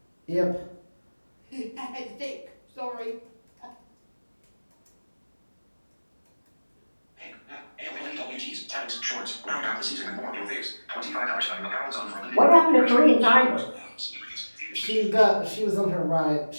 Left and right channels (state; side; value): inverted; both; correlation -1.00